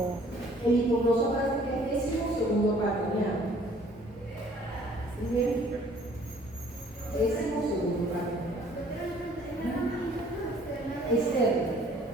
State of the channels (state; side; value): normal; both; correlation 0.57